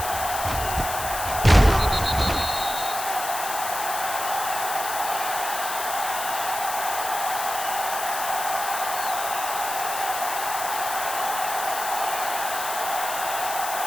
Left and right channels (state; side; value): noise; left; hiss, 5 dB below the sound